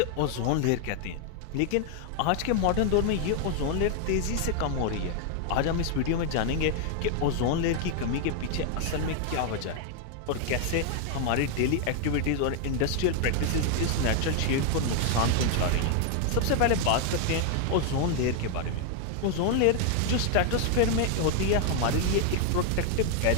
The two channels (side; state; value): both; different; correlation 0.00